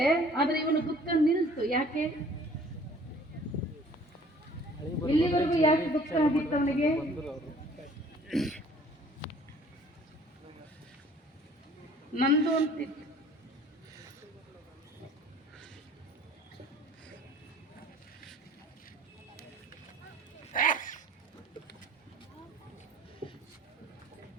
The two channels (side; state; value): both; normal; correlation 0.53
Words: ಆದ್ರೆ ಇವನು ದುಃಖ ನಿಲ್ತು. ಯಾಕೆ? ಇಲ್ಲಿವರೆಗೂ ಯಾಕೆ ದುಃಖ ಆಗಿತ್ತು ಅವನಿಗೆ? ನಂದು ಅಂತಿತ್ತು.